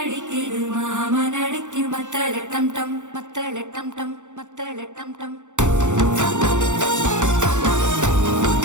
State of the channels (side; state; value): left; late; 0.85 ms